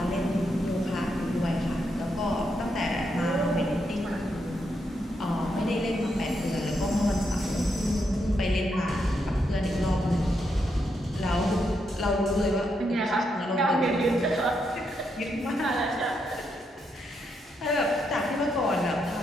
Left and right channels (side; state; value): both; normal; correlation 0.80